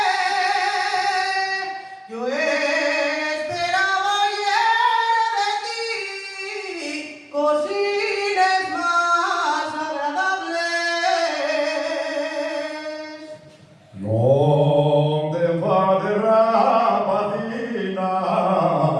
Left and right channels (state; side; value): identical; both; correlation 1.00